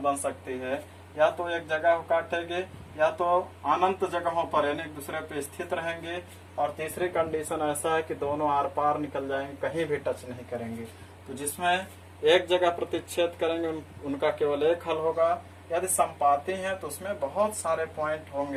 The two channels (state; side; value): identical; both; correlation 1.00